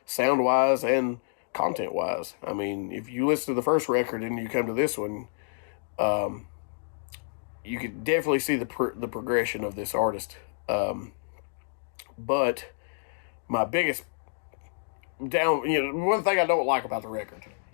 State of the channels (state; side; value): silent; right; digital silence